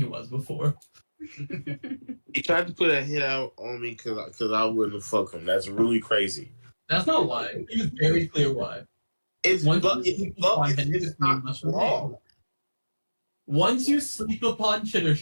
was before. He tried to put a hit out on me because I wouldn't fuck him. That's really crazy. That's not why. He was very clear why. It's Once but you it's, sleep but upon it's, him, it's the queen not must wrong. remain. Once you sleep upon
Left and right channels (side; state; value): both; inverted; correlation -1.00